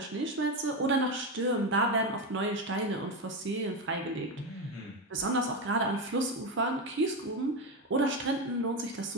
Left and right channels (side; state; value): both; normal; correlation 0.13